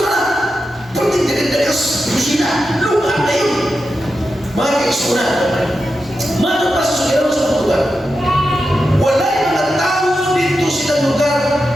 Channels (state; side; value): normal; both; correlation 0.89